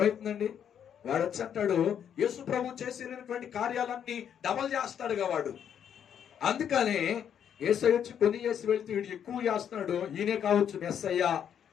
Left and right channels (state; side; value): quieter; right; 8.8 dB